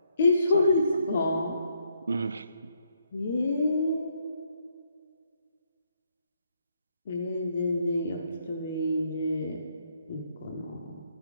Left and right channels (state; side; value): inverted; both; correlation -0.74